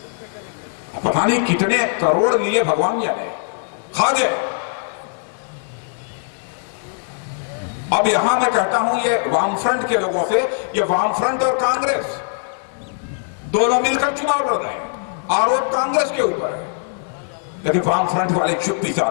पता नहीं कितने करोड़ लिए भगवान जाने, खा गए। अब यहां मैं कहता हूं, ये वामफ्रंट के लोगों से, ये वामफ्रंट और कांग्रेस दोनों मिलकर चुनाव लड़ रहे हैं, आरोप कांग्रेस के ऊपर है, लेकिन वामफ्रंट वाले चुप्पी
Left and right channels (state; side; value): silent; right; digital silence